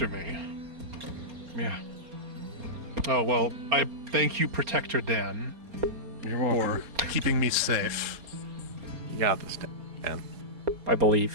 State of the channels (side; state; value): left; late; 4.3 ms